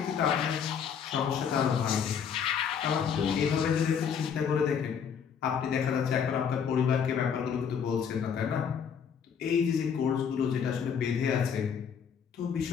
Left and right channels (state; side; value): quieter; right; 7.3 dB